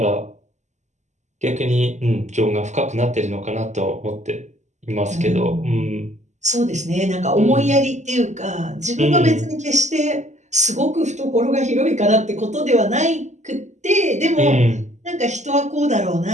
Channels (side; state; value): left; late; 0.34 ms